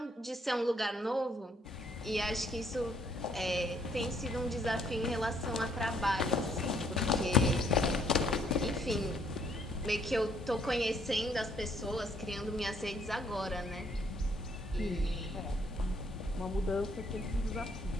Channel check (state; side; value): normal; both; correlation 0.67